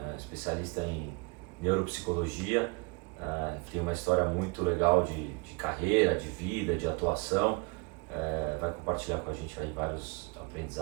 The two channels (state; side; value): quieter; left; 28.4 dB